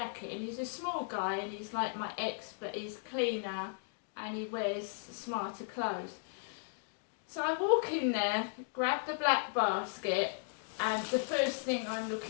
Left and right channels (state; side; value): silent; right; 54 dB below the other